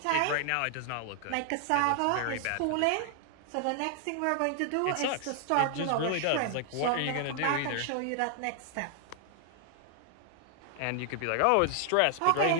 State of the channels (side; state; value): both; different; correlation 0.00